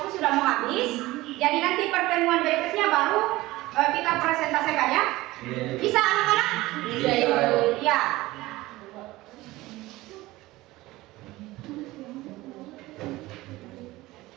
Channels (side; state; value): left; quieter; 18.8 dB